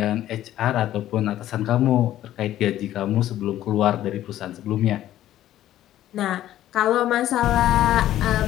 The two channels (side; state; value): right; quieter; 13.1 dB